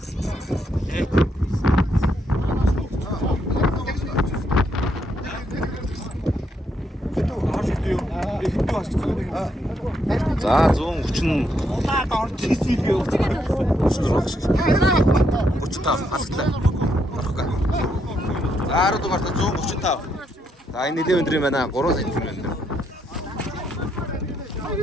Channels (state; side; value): normal; both; correlation 0.76